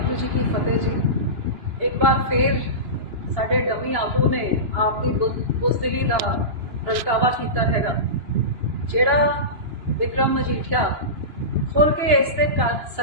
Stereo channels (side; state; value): left; late; 2.9 ms